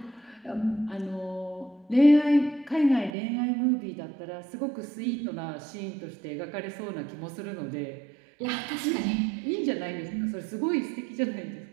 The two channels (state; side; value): drops out; left; at 3.1 s